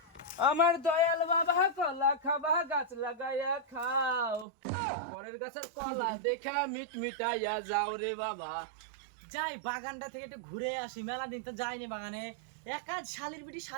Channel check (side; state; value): left; drops out; at 4.5 s